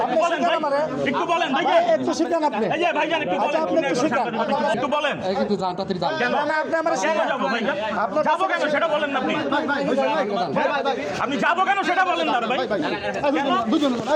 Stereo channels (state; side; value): identical; both; correlation 1.00